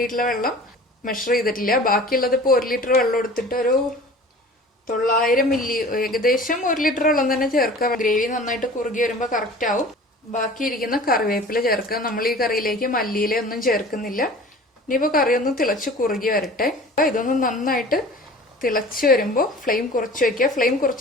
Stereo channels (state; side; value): normal; both; correlation 0.42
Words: വെള്ളം മെഷർ ചെയ്തിട്ടില്ല. ബാക്കിയുള്ളത് ഇപ്പോൾ 1 ലിറ്റർ വെള്ളം എടുത്തിട്ട് ഒരു 900 മില്ലി, ഏകദേശം 1 ലിറ്റർ വെള്ളം തന്നെ ചേർക്കുക. ഗ്രേവി നന്നായിട്ട് കുറുകി വരുമ്പോൾ കറക്റ്റ് ആവും. ബാക്കി ഇരിക്കുന്ന കറിവേപ്പില ചേർക്കുക. നമ്മൾ ഈ കറിയിലേക്ക് മല്ലിയില ഒന്നും ചേർക്കുന്നില്ല. ഇനിയിപ്പോൾ കറി ഒന്ന് തിളച്ച് കുറുകി വരട്ടെ. ഇതൊന്ന് നന്നായിട്ട് തിളച്ച് വരുമ്പോൾ ഫ്ലെയിം കുറച്ച് വെക്കുക. ഫ്ലെയിം